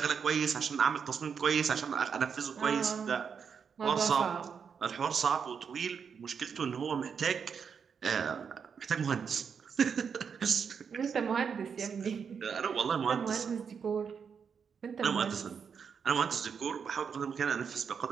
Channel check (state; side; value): quieter; left; 6.5 dB